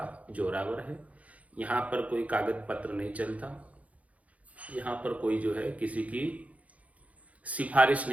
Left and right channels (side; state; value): left; late; 0.068 ms